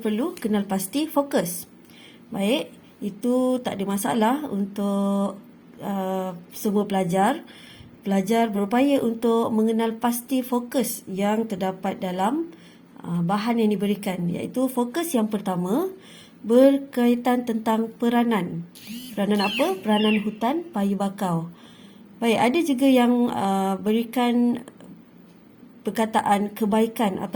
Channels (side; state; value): both; identical; correlation 1.00